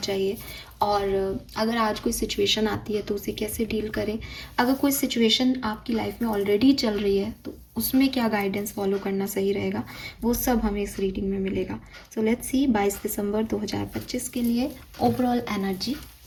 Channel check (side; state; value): both; identical; correlation 1.00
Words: और अगर आज कोई सिचुएशन आती है तो उसे कैसे डील करें, अगर कोई सिचुएशन आपकी लाइफ में ऑलरेडी चल रही है तो उसमें क्या गाइडेंस फॉलो करना सही रहेगा, वो सब हमें इस रीडिंग में मिलेगा। सो लेट्स सी 22 दिसंबर 2025 के लिए ओवरऑल एनर्जी